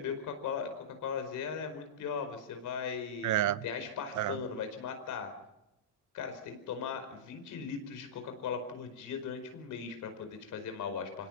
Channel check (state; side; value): normal; both; correlation -0.16